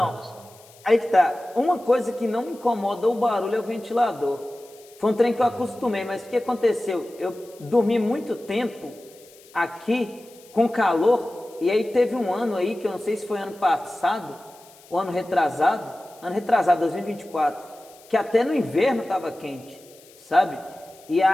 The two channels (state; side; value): noise; left; hiss, 25 dB below the sound